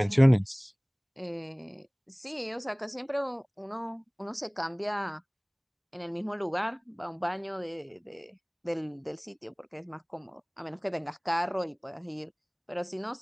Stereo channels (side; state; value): both; identical; correlation 1.00